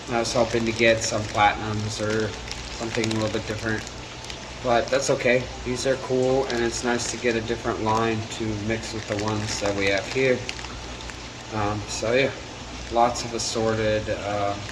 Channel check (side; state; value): both; identical; correlation 1.00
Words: was hoping to get some platinums or something a little bit different, but that's okay. These are cool, and it's nice to get a different line to mix with the ones that we have here. So yeah, lots of assorted,